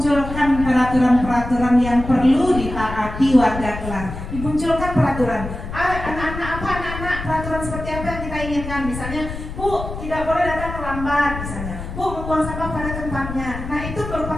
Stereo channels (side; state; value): left; noise; rumble, 8 dB below the sound